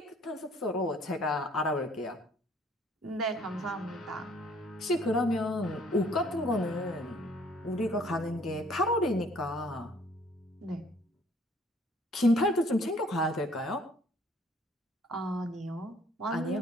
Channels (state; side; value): normal; both; correlation 0.59